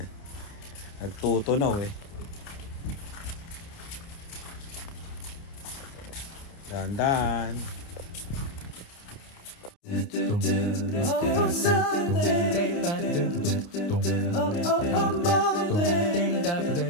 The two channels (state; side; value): late; right; 29 ms